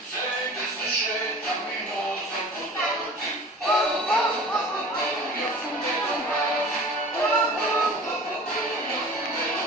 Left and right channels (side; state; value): both; normal; correlation 0.42